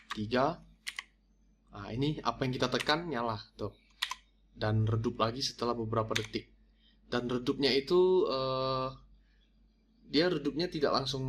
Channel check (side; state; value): both; identical; correlation 1.00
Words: 3. Nah, ini apa yang kita tekan nyala tuh. Dan redup lagi setelah beberapa detik. Dan redupnya itu dia redupnya tidak langsung